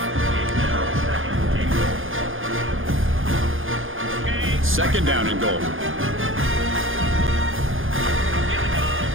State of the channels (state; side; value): late; left; 0.59 ms